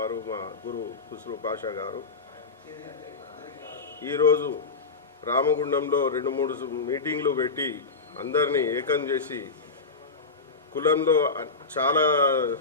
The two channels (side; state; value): right; quieter; 4.2 dB